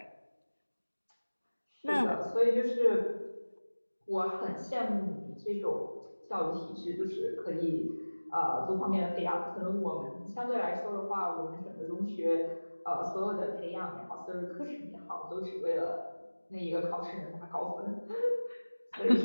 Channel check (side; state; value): both; inverted; correlation -1.00